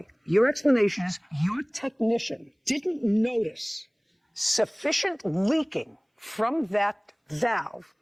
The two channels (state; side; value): identical; both; correlation 1.00